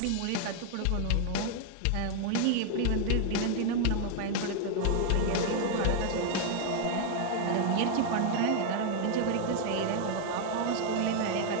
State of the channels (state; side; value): different; both; correlation 0.00